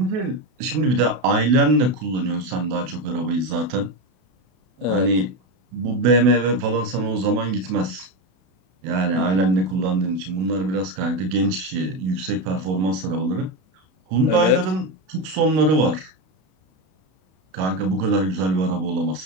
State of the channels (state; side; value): late; left; 32 ms